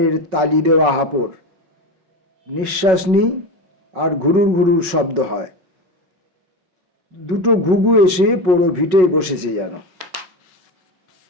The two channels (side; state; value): left; late; 5.4 ms